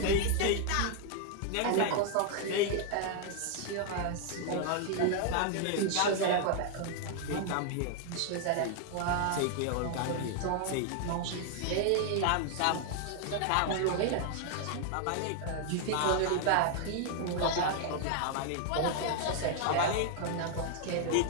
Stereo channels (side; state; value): both; different; correlation 0.00